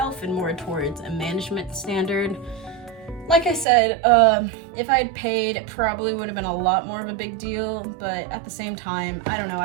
and more towards a management standard. Like I said, if I had paid, it probably would have been a lot more of a big deal, but at the same time, I don't know,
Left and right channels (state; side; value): drops out; left; at 3.7 s